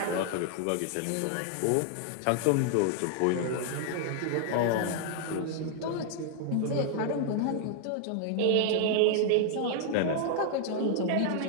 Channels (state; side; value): different; both; correlation 0.00